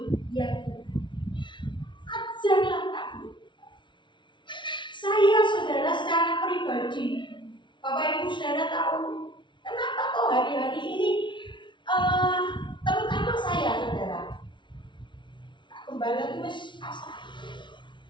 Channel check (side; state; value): right; late; 0.24 ms